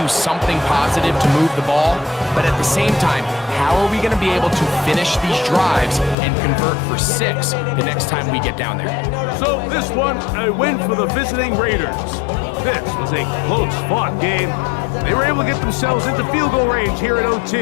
do something positive to move the ball. But at the same time, how are we going to be able to finish these drives and convert for 6 the next time we get down there? So this one, a win for the visiting Raiders. This was a close-fought game. They were able to get themselves into field goal range here at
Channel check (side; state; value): right; drops out; at 6.2 s